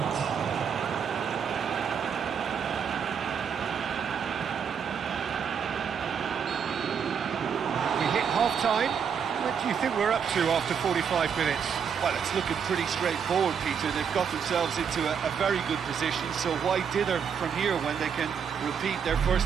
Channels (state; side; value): quieter; left; 7.2 dB